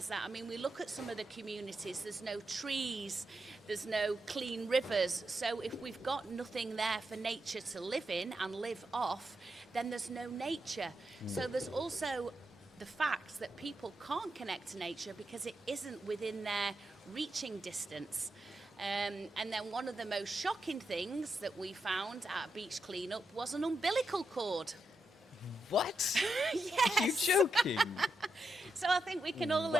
that. I mean, we look at some of the communities, there's no trees, there's no clean rivers. So if we've got nothing there for nature to live in and live off, then there's no nature. So there's also the fact that people can't connect to nature because it isn't within their reaching distance. And then one of the most shocking things that we found at a beach cleanup was an umbilical cord. What? Yes. You're joking. So I think we can all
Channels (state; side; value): normal; both; correlation 0.85